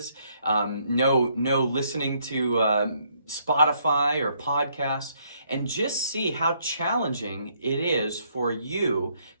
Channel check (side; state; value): both; inverted; correlation -0.69